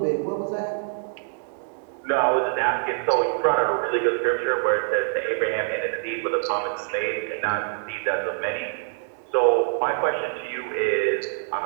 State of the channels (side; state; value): left; silent; digital silence